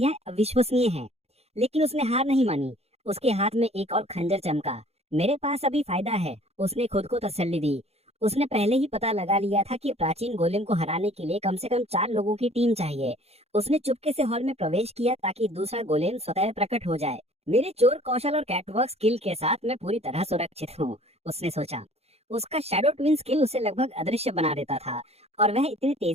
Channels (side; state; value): left; late; 0.30 ms